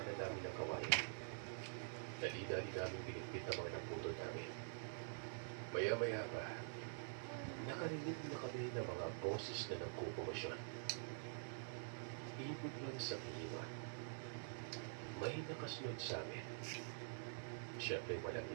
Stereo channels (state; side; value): silent; left; digital silence